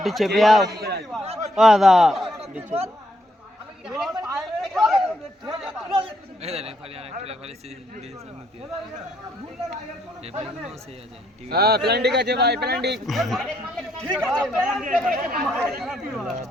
চেপে যাও। ও দাদা হ্যাঁ প্ল্যান্ডিং আছে ভাই, প্ল্যান্ডিং।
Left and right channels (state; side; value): normal; both; correlation 0.73